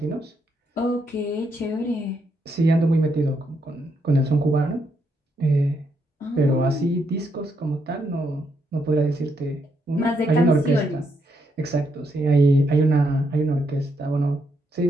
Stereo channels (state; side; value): normal; both; correlation 0.78